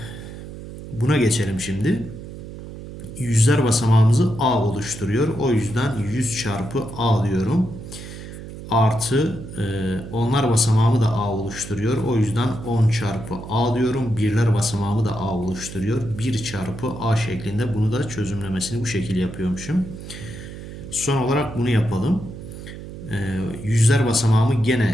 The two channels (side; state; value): right; noise; hum, 12 dB below the sound